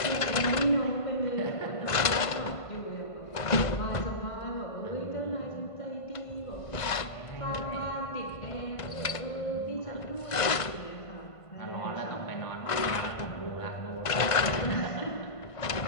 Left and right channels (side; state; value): right; late; 1.5 ms